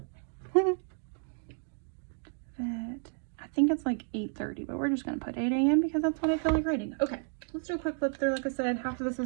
Vet. I think it's like 8:30, but we're just going to put 8 a.m. because that's what I feel like writing. Okay, let's do a quick flip through. Like I said, half of this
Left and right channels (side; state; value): left; silent; 56 dB below the other